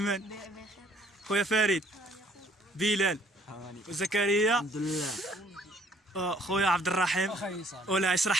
خويا فريد، بلال وزكريا، الحمد لله. خويا عبد الرحيم. ولا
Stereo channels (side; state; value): both; normal; correlation 0.61